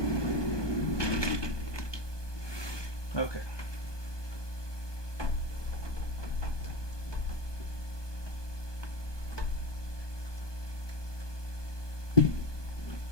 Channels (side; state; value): right; late; 1.2 ms